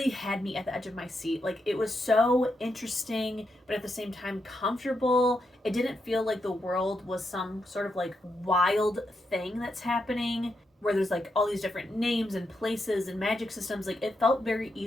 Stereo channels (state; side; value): normal; both; correlation 0.82